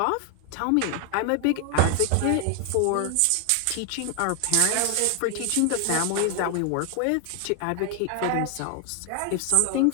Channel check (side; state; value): both; different; correlation 0.00